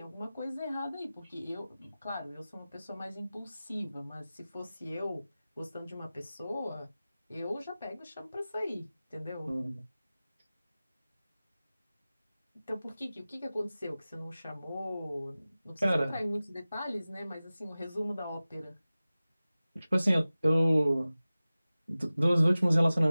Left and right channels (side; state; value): both; inverted; correlation -0.97